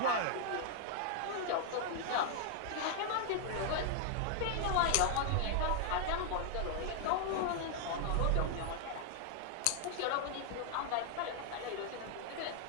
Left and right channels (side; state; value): both; different; correlation 0.00